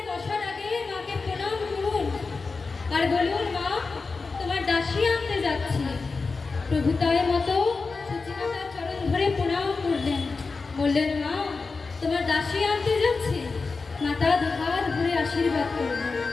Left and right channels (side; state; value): right; quieter; 4.2 dB